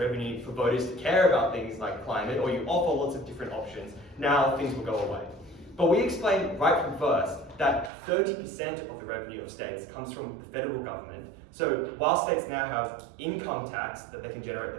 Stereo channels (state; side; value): drops out; left; at 7.9 s